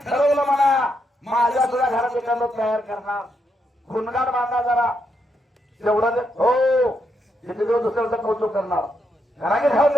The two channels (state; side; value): normal; both; correlation 0.80